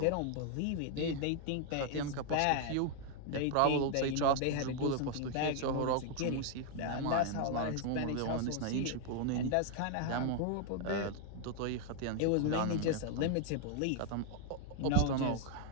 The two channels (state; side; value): different; both; correlation 0.00